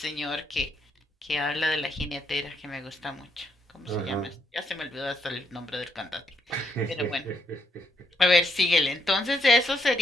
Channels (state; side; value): normal; both; correlation 0.75